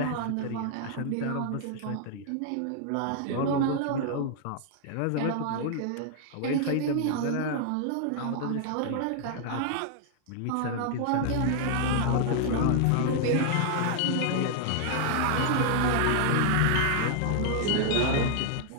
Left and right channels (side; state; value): both; different; correlation 0.00